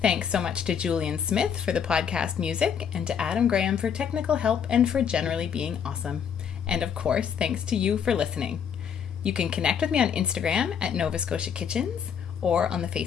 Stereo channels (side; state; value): right; quieter; 7.7 dB